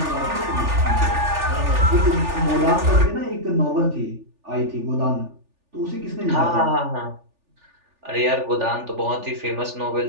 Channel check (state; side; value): late; left; 3.4 ms